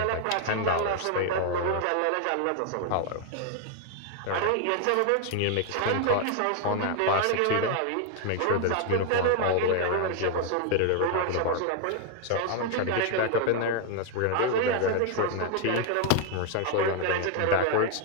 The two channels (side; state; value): both; different; correlation 0.00